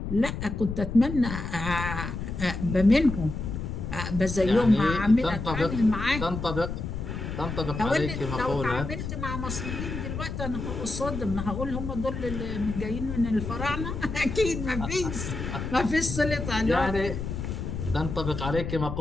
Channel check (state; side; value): noise; left; rumble, 5 dB below the sound